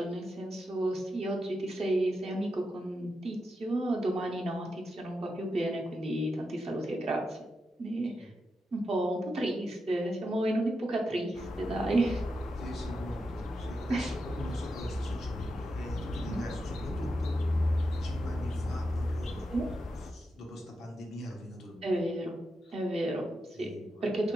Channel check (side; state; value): both; normal; correlation 0.87